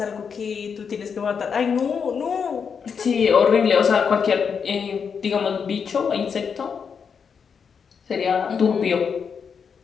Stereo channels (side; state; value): right; quieter; 6.4 dB